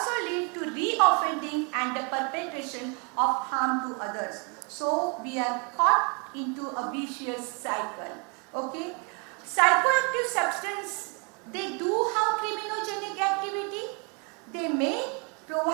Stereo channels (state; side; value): quieter; left; 35.0 dB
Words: lead to re-offending and the perpetration of harm to others. So we are caught into a vicious cycle. Okay? Psychoactive substance, they do have criminogenic activity. They may,